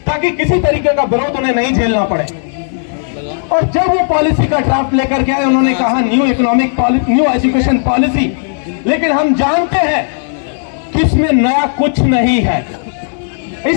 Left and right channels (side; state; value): right; silent; digital silence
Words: ताकि किसी तरीके का विरोध उन्हें नहीं झेलना पड़े। और जब वो पॉलिसी का ड्राफ्ट लेकर के आए, उन्होंने कहा new economic policy, new education policy. लेकिन हम जानते हैं कि इसमें नया कुछ नहीं है।